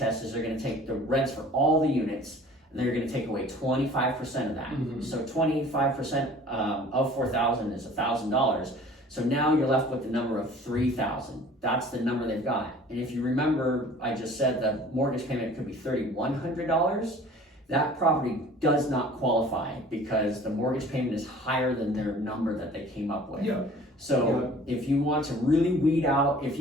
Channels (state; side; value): normal; both; correlation 0.48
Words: is they're gonna take the rents for all the units and they're gonna take away 25% of that. Mm-hmm. So 25% of 4,000 is $1,000. So now you're left with the number of 3,000. That's the number they've got. And if you remember, I just said the mortgage payment could be $3,100. That property does not qualify because the mortgage payment is higher than their number that they came up with. Yeah. So if you want to really weed out, if